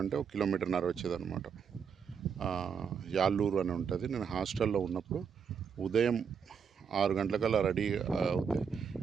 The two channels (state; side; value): quieter; left; 6.7 dB